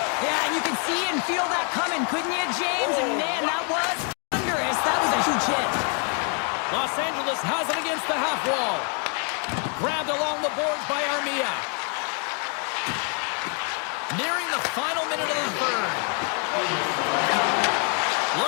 Yeah, and you can see and feel that coming, couldn't you, James? And man, that was thunderous. That was a huge hit. Los Angeles has it against the half wall. Grabbed along the boards by Armia. Nearing the final minute of the third.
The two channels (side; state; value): right; quieter; 39.9 dB